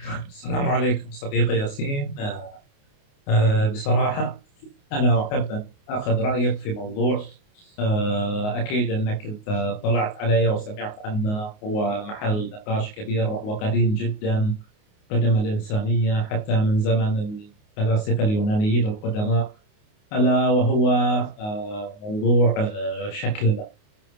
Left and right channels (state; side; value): late; right; 28 ms